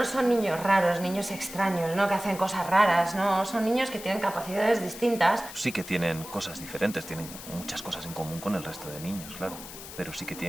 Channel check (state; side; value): noise; left; hiss, 13 dB below the sound